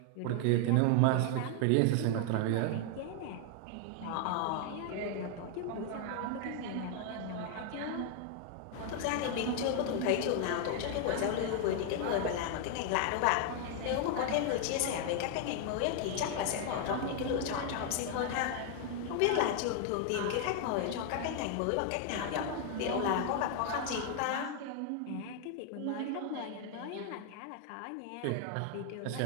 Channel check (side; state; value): both; different; correlation 0.00